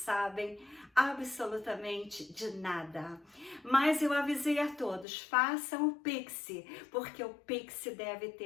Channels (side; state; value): right; drops out; at 5.1 s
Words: absolutamente de nada. Mas eu avisei a todos, façam o Pix, porque o Pix deve